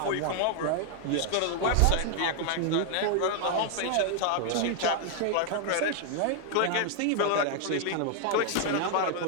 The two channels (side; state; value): both; different; correlation 0.00